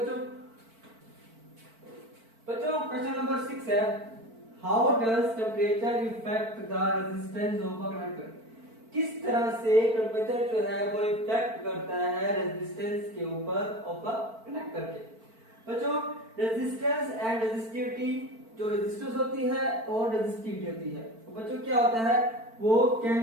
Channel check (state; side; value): late; left; 4.5 ms